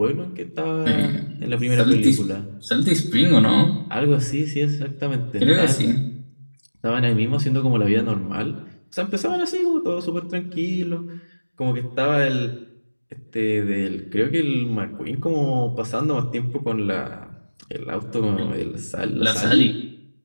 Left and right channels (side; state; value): both; inverted; correlation -1.00